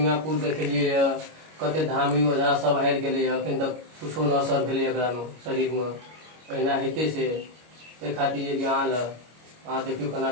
देखलिए, कते धामी ओझा सब हारि गेलै। अखन तक कुछो न असर भेलै एकरा में, शरीर में। अहिना हेते से ताहि खातिर अहाँ लग अहाँ देखियो केना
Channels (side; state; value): left; late; 25 ms